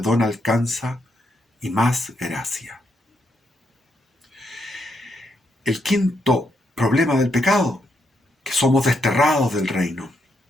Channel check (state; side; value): normal; both; correlation 0.79